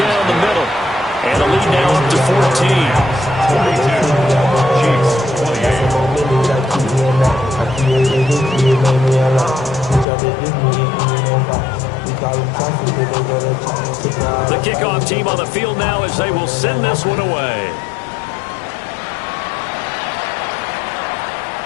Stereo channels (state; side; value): drops out; right; at 10.1 s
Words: the middle. And the lead now up to 14. The kickoff team on the field now as they will send this one away.